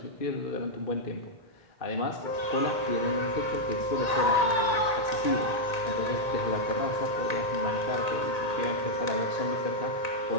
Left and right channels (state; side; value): late; right; 1.9 ms